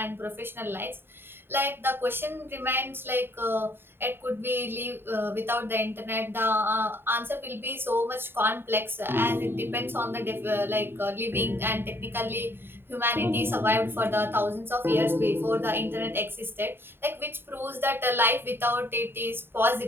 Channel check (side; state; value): left; late; 0.11 ms